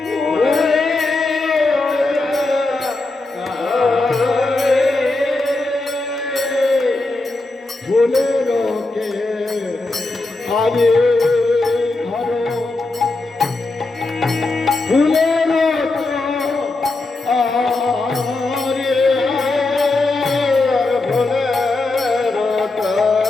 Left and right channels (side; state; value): right; quieter; 3.2 dB